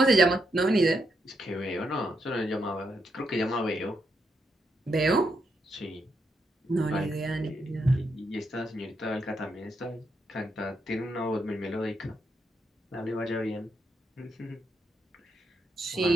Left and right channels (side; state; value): both; normal; correlation 0.80